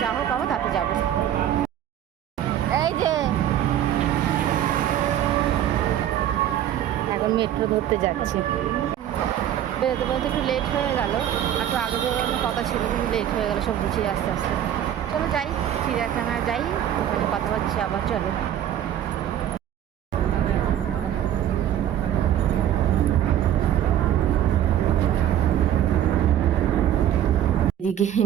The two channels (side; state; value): left; quieter; 11.1 dB